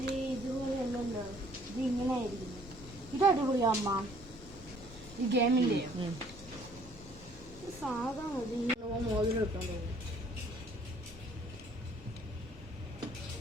ഇതുപോലെ അല്ലല്ലോ, ഇത് ഇങ്ങനെ ആയിരിക്കും. ഇത് അടിപൊളിയാ അമ്മ. ഈ ഗെയിമിന്റെ സാധാ മതി. മോതിരം ഇട്ടാൻ തോന്നുന്നു.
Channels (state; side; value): normal; both; correlation 0.59